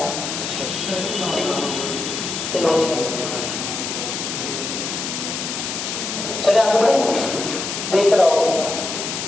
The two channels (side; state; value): left; noise; hiss, 4 dB below the sound